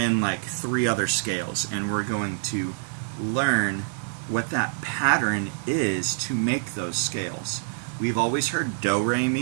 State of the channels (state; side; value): silent; left; 59 dB below the other